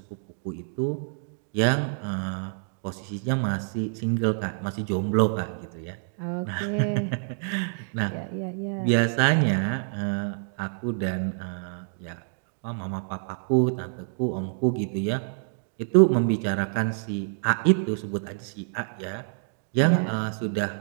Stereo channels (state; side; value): silent; left; digital silence